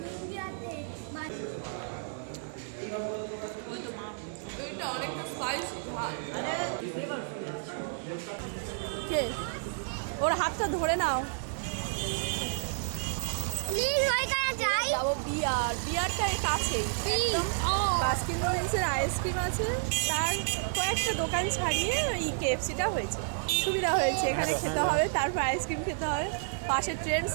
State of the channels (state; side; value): silent; left; digital silence